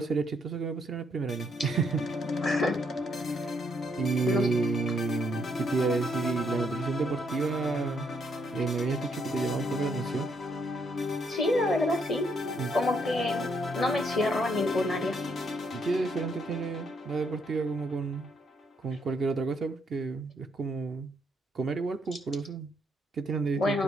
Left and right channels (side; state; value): both; normal; correlation 0.73